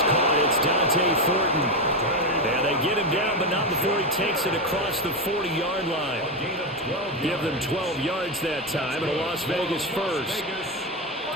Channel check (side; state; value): both; normal; correlation 0.12